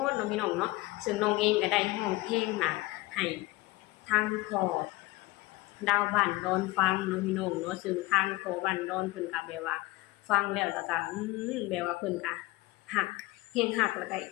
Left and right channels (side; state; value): right; quieter; 20.8 dB